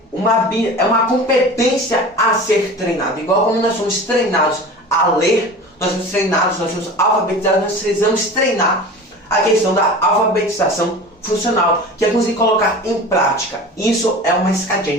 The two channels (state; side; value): normal; both; correlation 0.36